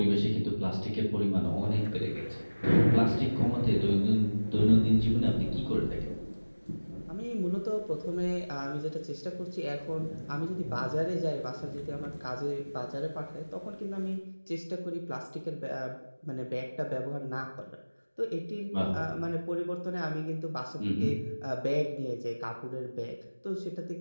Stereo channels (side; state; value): both; inverted; correlation -1.00